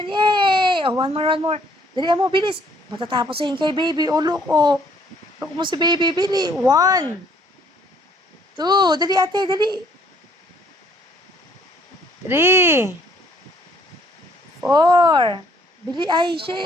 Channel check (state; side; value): normal; both; correlation 0.62